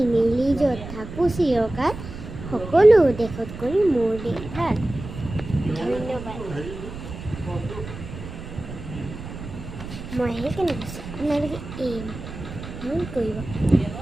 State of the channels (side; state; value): right; noise; rumble, 11 dB below the sound